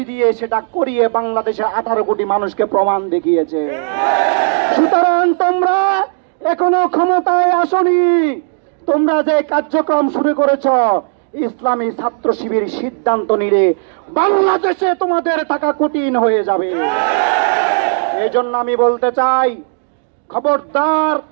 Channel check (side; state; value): left; silent; 70 dB below the other